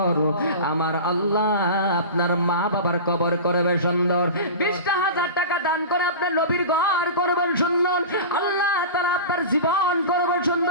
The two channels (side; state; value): both; inverted; correlation -0.31